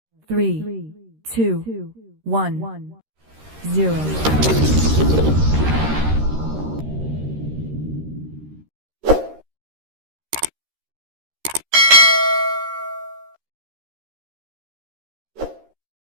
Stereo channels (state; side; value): late; left; 13 ms